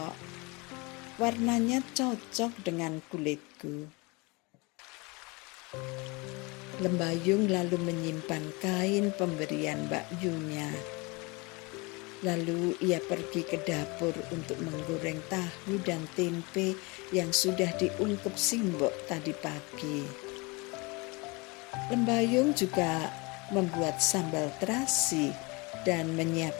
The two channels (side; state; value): right; quieter; 27.1 dB